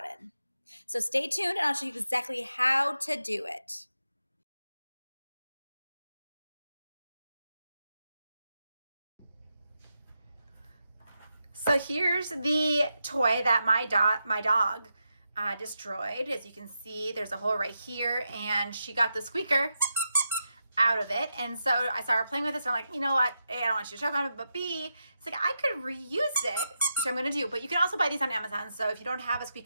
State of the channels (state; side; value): inverted; both; correlation -0.87